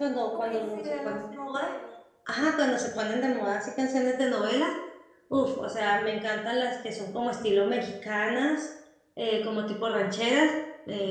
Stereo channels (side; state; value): both; identical; correlation 1.00